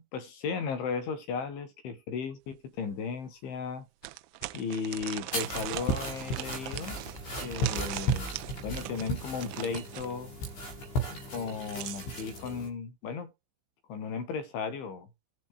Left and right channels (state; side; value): late; right; 15 ms